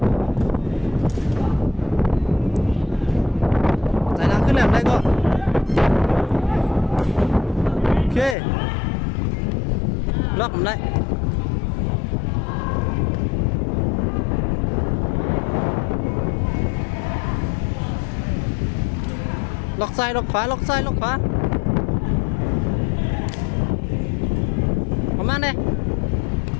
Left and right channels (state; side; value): drops out; right; at 8.3 s